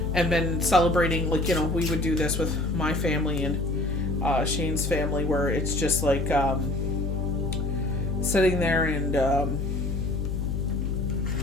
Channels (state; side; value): noise; left; hum, 1 dB below the sound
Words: and been celebrating, like, we would do this with my family and Shane's family, where it's just like sitting there and